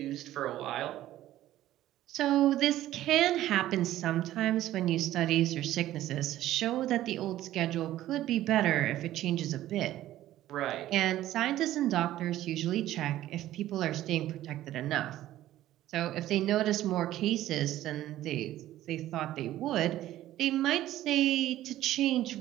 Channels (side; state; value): left; quieter; 13.9 dB